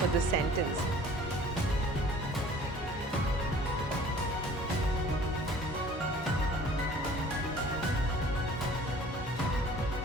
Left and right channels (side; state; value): both; normal; correlation 0.50